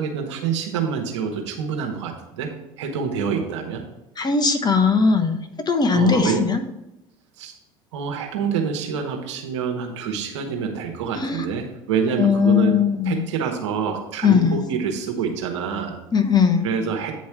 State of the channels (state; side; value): normal; both; correlation 0.39